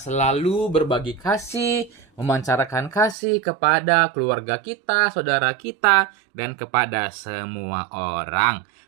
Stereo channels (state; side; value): drops out; left; at 3.2 s